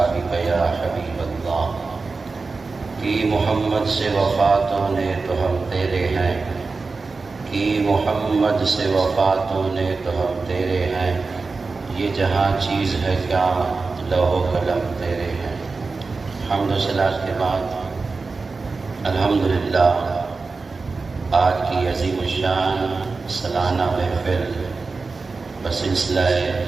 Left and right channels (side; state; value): left; quieter; 4.1 dB